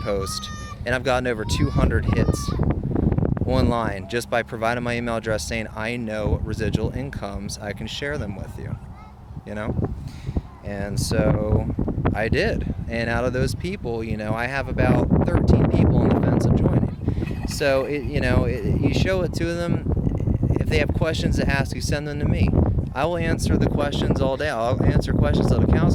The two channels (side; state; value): both; identical; correlation 1.00